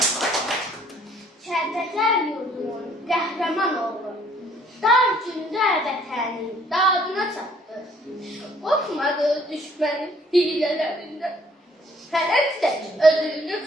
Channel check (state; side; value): normal; both; correlation 0.61